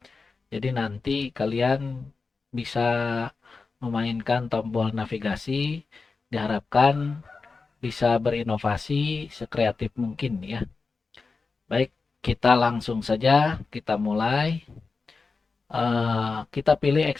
Jadi nanti kalian bisa memainkan tombol navigasi, diharapkan bisa berinovasi sekreatif mungkin ya. Baik, kita langsung saja, kita mulai. Kita pilih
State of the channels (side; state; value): right; quieter; 4.3 dB